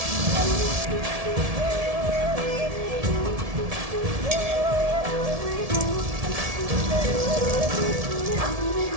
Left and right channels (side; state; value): left; late; 1.7 ms